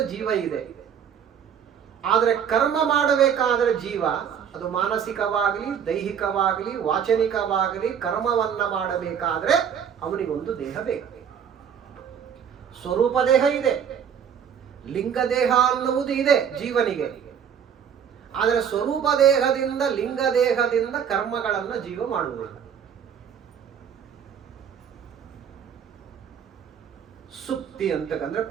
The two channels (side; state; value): left; quieter; 8.1 dB